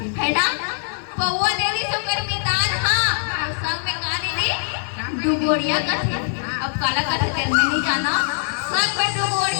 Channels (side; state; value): right; silent; digital silence